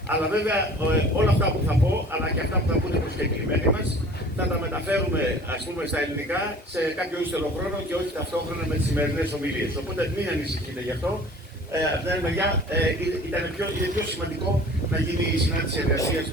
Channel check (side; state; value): both; normal; correlation 0.46